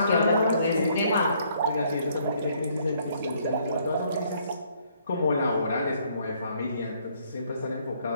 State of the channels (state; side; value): inverted; both; correlation -0.66